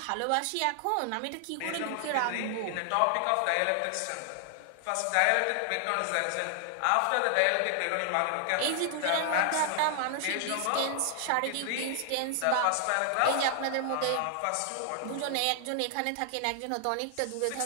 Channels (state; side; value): different; both; correlation 0.00